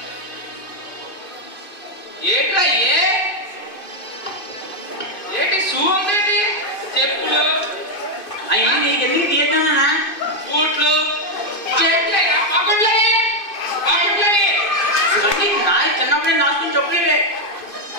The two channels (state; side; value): late; right; 2.5 ms